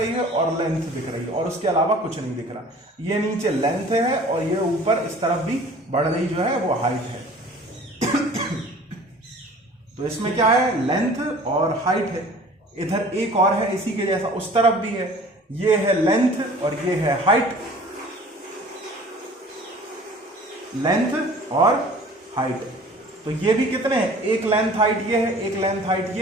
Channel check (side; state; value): both; normal; correlation 0.47